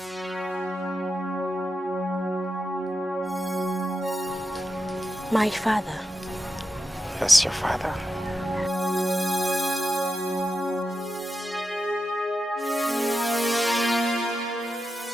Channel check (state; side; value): normal; both; correlation 0.89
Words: My father. Yes, your father.